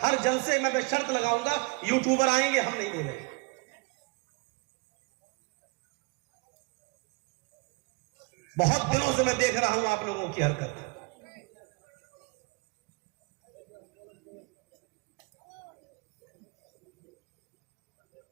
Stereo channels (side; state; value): left; quieter; 28.2 dB